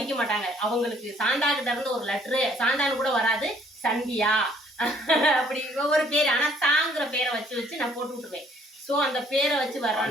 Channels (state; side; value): normal; both; correlation 0.61